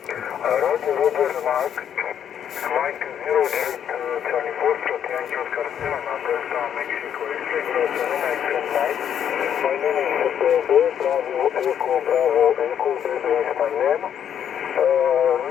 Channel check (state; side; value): quieter; right; 9.1 dB